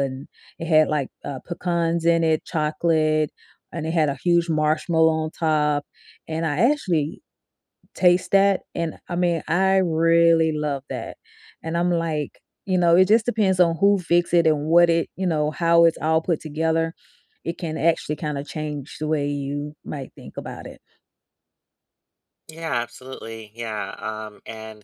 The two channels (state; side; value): identical; both; correlation 1.00